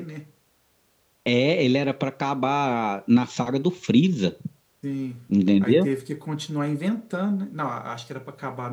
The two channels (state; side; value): identical; both; correlation 1.00